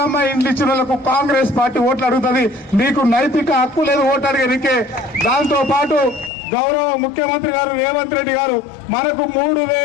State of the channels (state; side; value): drops out; right; at 6.3 s